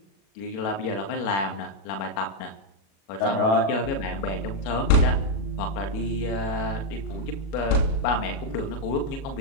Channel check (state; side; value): late; right; 37 ms